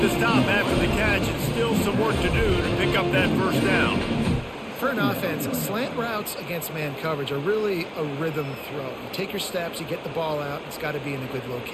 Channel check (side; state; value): both; identical; correlation 1.00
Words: the stop after the catch, and still some work to do to pick up that first down. For an offense, slant routes against man coverage are really a rhythm throw. You take your steps, you get the ball out, it's got to be in a good